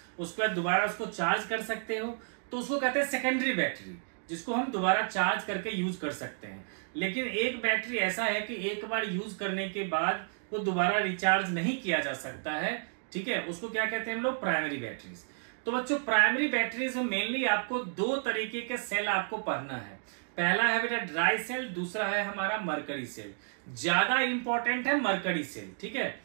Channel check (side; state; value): left; silent; digital silence